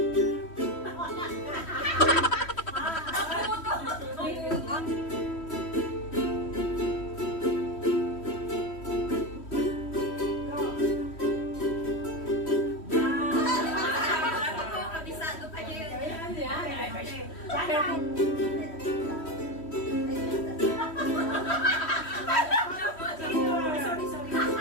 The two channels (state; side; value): late; right; 3.1 ms